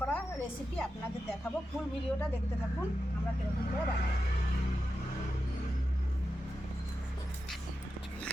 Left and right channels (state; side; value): normal; both; correlation 0.89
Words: করা রেসিপি আপনাদের দেখাবো। ফুল ভিডিওটা দেখতে থাকুন আমরা কীরকম করে বানাই।